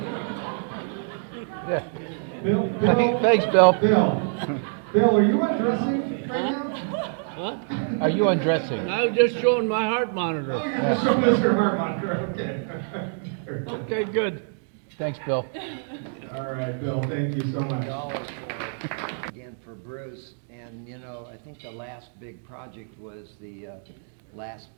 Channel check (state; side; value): silent; left; digital silence